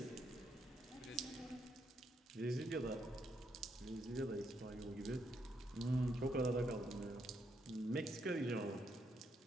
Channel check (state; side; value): normal; both; correlation 0.77